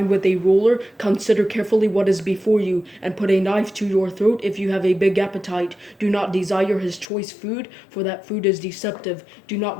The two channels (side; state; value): right; drops out; at 7.1 s